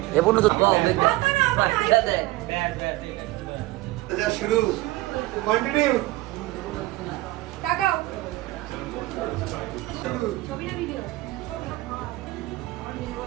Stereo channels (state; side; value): quieter; left; 18.8 dB